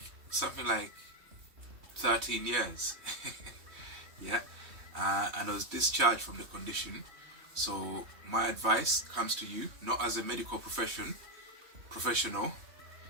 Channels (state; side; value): late; left; 3.2 ms